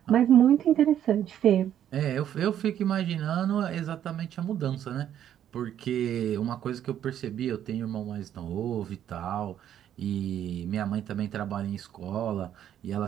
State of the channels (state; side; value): quieter; left; 10.4 dB